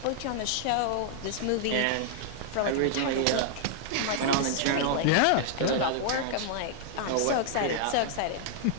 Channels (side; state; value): both; different; correlation -0.01